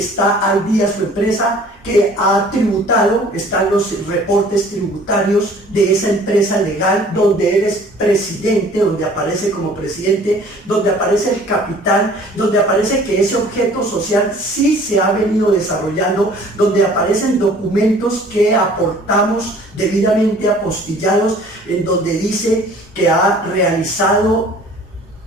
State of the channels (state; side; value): normal; both; correlation 0.51